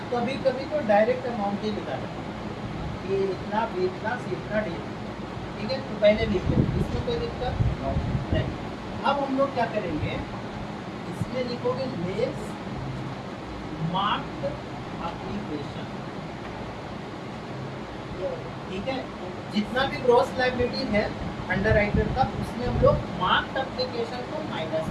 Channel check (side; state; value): both; identical; correlation 1.00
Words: कभी कभी तो डायरेक्ट अमाउंट ही निकाला, ये इतना, बी इतना, सी इतना, डी। ठीक है, तो पहले लिख लेंगे, इसमें कोई दिक्कत नहीं। अब हम लोग क्या करेंगे, इसमें लिखोगे लेस मार्क्ड एप्लीकेशन। ठीक है, जितना भी ग्रॉस लायबिलिटी है अंडर राइटर का, उसमें हम लोग मार्क्ड एप्लीकेशन को माइनस